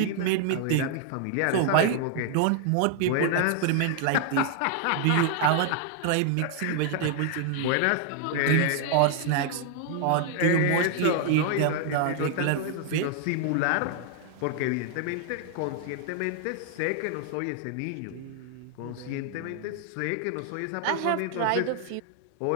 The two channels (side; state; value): both; different; correlation 0.00